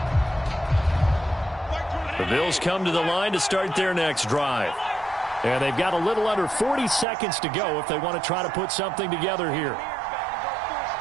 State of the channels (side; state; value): left; drops out; at 7.1 s